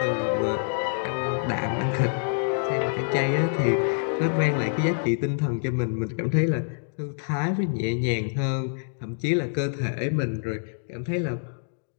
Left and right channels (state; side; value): silent; right; digital silence